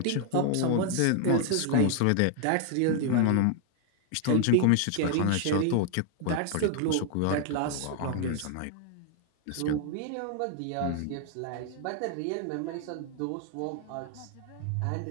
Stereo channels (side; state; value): both; different; correlation 0.00